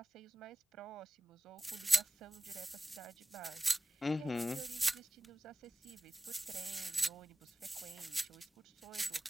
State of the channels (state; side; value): normal; both; correlation 0.97